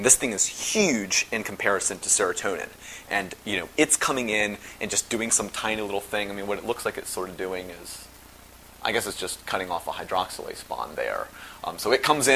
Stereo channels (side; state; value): both; identical; correlation 1.00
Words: thing is huge in comparison to serotonin. And, it's coming in and just doing some tiny little thing. What it looks like it's sort of doing is, I guess it's just cutting off a hydroxylase bond there. So it comes